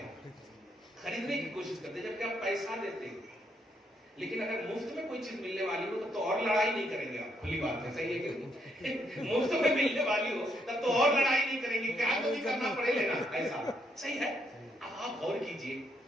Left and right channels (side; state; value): both; normal; correlation 0.75